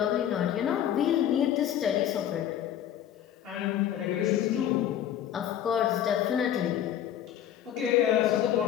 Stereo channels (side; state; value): right; quieter; 10.6 dB